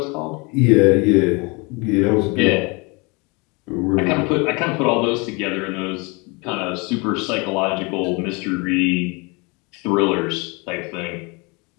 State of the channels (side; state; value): right; quieter; 28.9 dB